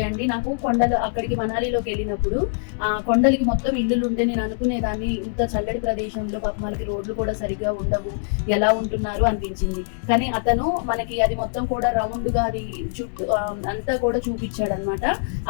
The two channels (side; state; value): right; silent; 63 dB below the other